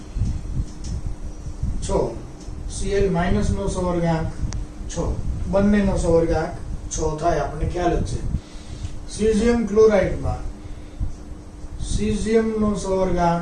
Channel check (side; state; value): both; identical; correlation 1.00